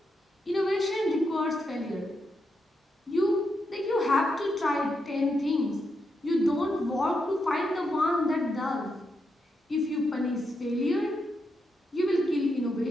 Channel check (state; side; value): normal; both; correlation 0.83